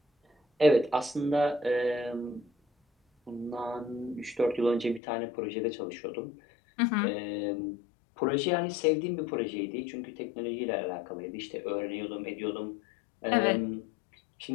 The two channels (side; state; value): right; drops out; at 5.0 s